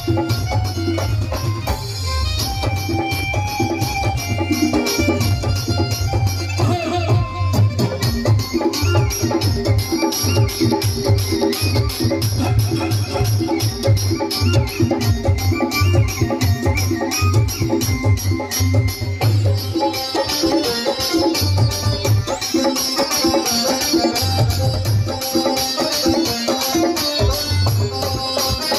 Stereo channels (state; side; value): identical; both; correlation 1.00